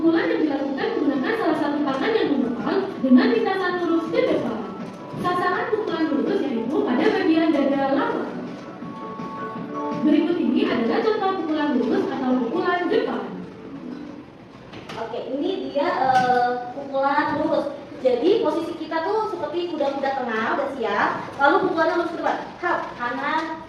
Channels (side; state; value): both; identical; correlation 1.00